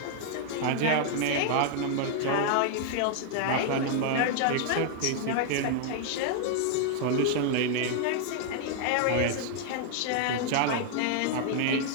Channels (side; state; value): both; different; correlation 0.00